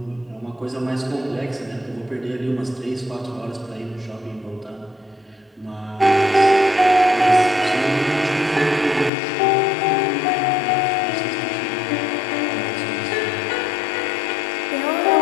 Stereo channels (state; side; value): drops out; right; at 9.1 s